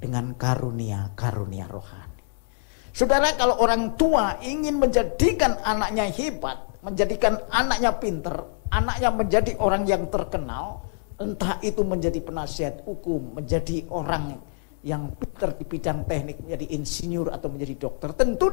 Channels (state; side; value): silent; right; 61 dB below the other